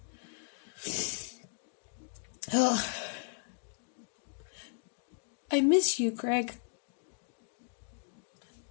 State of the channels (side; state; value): right; silent; digital silence